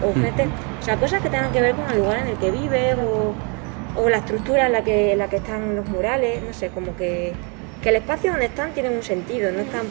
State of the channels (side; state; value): left; quieter; 34.7 dB